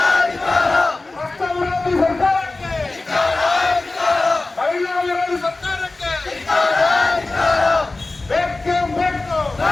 ರಾಷ್ಟ್ರ ವಿರೋಧಿ ಸರ್ಕಾರಕ್ಕೆ, ಮಹಿಳಾ ವಿರೋಧಿ ಸರ್ಕಾರಕ್ಕೆ ಬೇಕೇ ಬೇಕು,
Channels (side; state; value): right; quieter; 3.2 dB